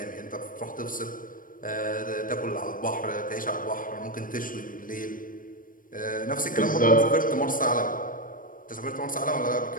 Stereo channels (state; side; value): late; right; 0.40 ms